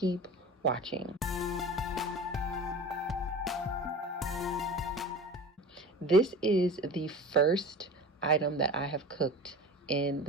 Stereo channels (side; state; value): both; normal; correlation 0.35